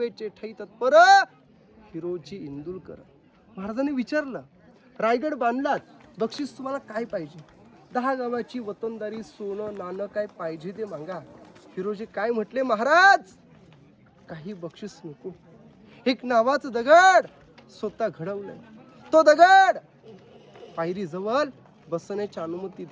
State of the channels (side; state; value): both; identical; correlation 1.00